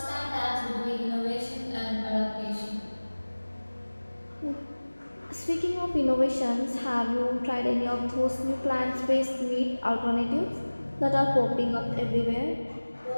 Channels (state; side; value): inverted; both; correlation -1.00